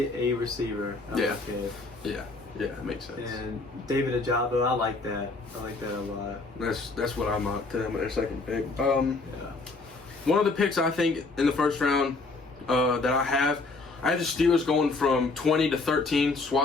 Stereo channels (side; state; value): right; quieter; 3.6 dB